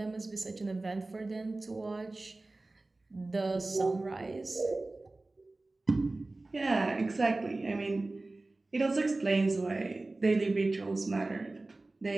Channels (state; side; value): quieter; left; 3.1 dB